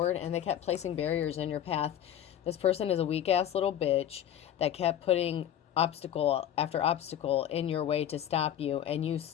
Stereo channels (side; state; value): right; quieter; 10.5 dB